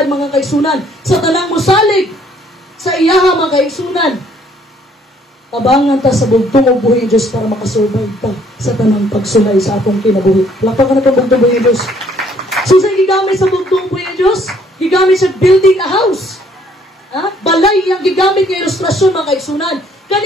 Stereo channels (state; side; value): normal; both; correlation 0.63